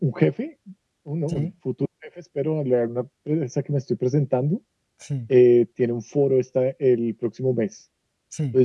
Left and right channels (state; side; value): identical; both; correlation 1.00